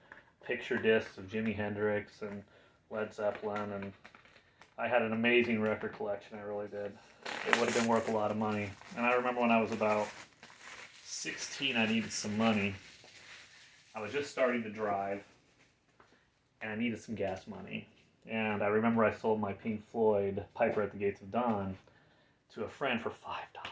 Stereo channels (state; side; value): identical; both; correlation 1.00